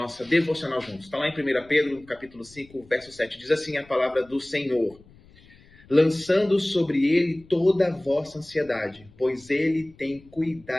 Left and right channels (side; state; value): left; noise; rumble, 26 dB below the sound